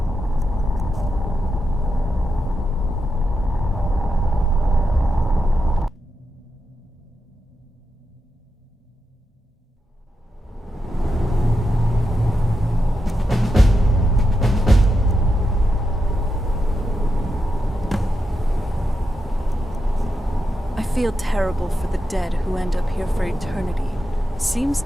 I feel terrible for the dead who end up here for eternity. Seems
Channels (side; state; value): both; normal; correlation 0.87